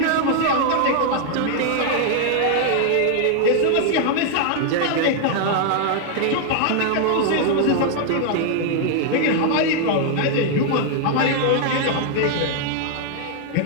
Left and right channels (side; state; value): both; different; correlation 0.00